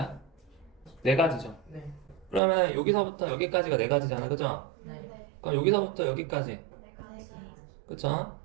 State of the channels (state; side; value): drops out; left; at 2.4 s